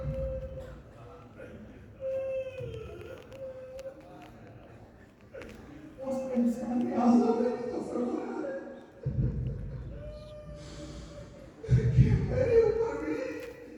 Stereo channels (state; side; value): identical; both; correlation 1.00